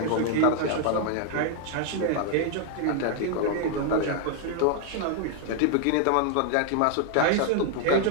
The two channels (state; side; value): different; both; correlation 0.00